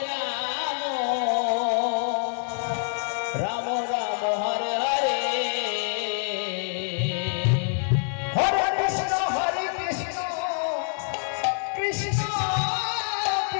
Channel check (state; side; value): silent; right; 61 dB below the other